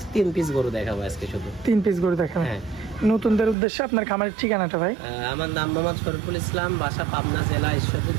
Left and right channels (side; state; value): left; drops out; at 3.6 s